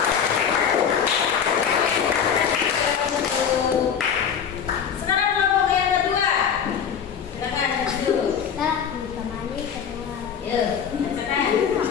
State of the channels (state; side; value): quieter; right; 7.6 dB